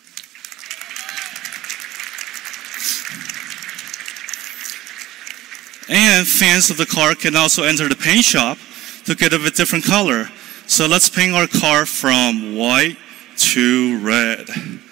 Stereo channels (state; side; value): quieter; left; 15.7 dB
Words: And fans of the car can also enter the paint shop to get a different color. So let's paint our car from white to red.